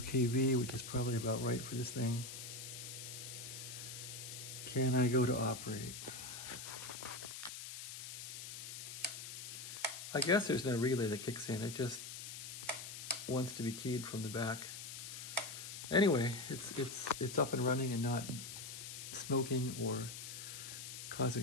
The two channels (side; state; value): left; noise; hiss, 8 dB below the sound